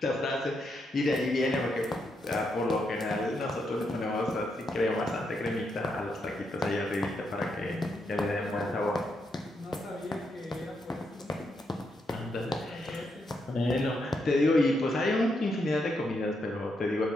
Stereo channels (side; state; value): both; normal; correlation 0.81